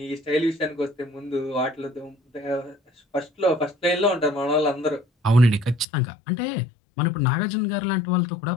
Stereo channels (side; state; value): right; drops out; at 5.9 s